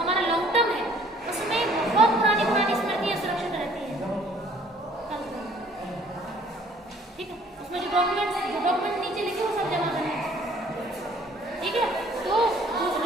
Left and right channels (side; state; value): both; normal; correlation 0.57